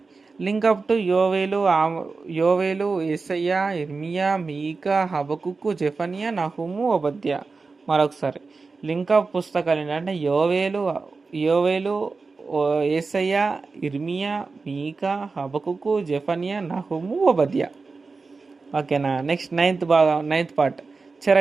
లింక్ అప్ టు యోవేలు, యేసయ్య, ఇర్మియా, మీకా, హబకుక్కు, జెఫనియా, నహూము, ఓబద్య. మరొకసారి లింక్ అప్ పుస్తకాలు ఏంటంటే యోవేలు, యేసయ్య, ఇర్మియా, మీకా, హబకుక్కు, జెఫనియా, నహూము, ఓబద్య. ఓకేనా. నెక్స్ట్ నైన్త్ పార్ట్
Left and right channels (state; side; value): quieter; left; 4.2 dB